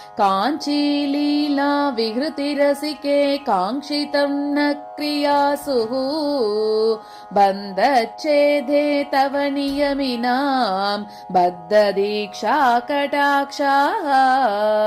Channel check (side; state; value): both; identical; correlation 1.00